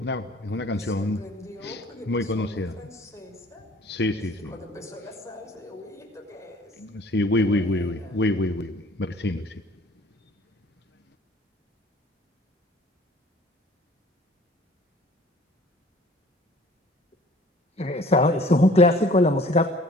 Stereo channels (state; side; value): normal; both; correlation 0.52